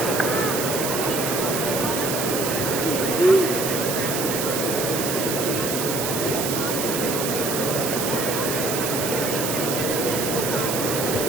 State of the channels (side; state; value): right; noise; hiss, 2 dB below the sound